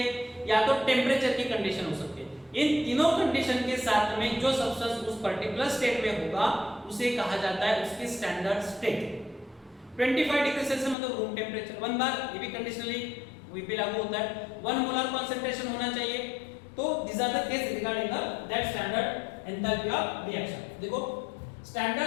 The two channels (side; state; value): right; drops out; at 11.0 s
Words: या तो टेम्परेचर की कंडीशन हो सकती है। इन तीनों कंडीशन के साथ में जो सब्सटेंस उस पर्टिकुलर स्टेट में होगा उसे कहा जाता है उसकी स्टैंडर्ड स्टेट। 25 डिग्री सेल्सियस मतलब रूम टेम्परेचर, 1 बार ये भी कंडीशनली वही पे लागू होता है, 1 मोलर कॉन्सेंट्रेशन होना चाहिए। तो this are the case regarding that standard enthalpy of reaction. देखो